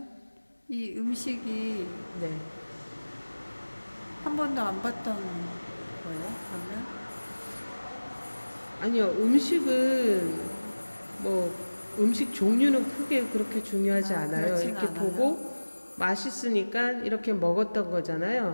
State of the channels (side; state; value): both; inverted; correlation -1.00